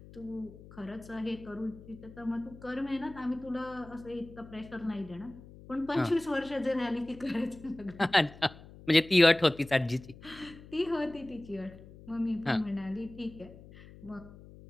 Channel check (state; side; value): noise; left; hum, 19 dB below the sound